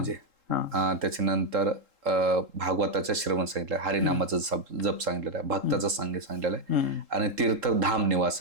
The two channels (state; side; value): late; left; 3.7 ms